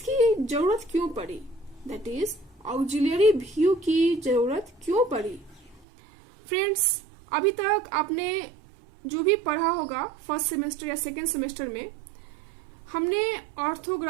जरूरत क्यों पड़ी। दैट इज ऑक्सिलरी व्यू की जरूरत क्यों पड़ी। फ्रेंड्स, अभी तक आपने जो भी पढ़ा होगा फर्स्ट सेमेस्टर या सेकेंड सेमेस्टर में, हमने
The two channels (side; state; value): left; drops out; at 5.9 s